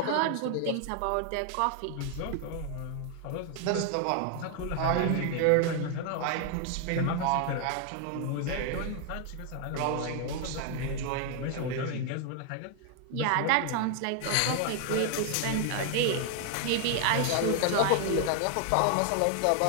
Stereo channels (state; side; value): different; both; correlation 0.00